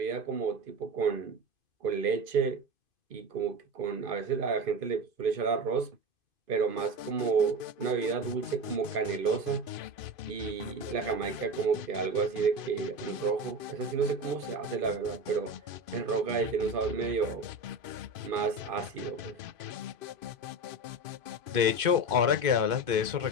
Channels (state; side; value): late; left; 2.5 ms